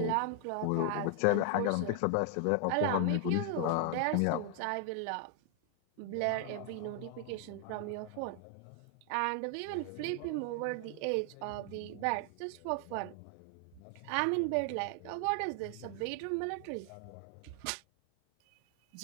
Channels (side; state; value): both; different; correlation 0.00